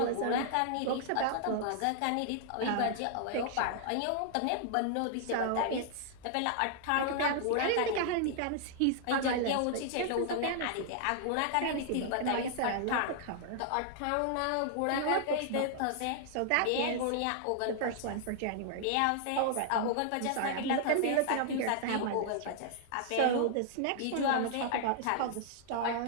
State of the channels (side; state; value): both; different; correlation -0.01